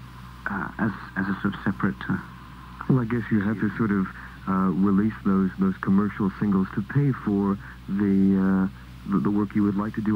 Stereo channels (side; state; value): both; identical; correlation 1.00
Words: as a sort of separate. Well, I guess you have to sort of release those commercial singles to pay for the work you would like to